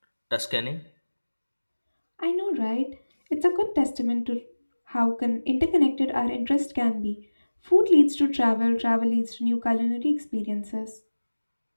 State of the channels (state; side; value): inverted; both; correlation -1.00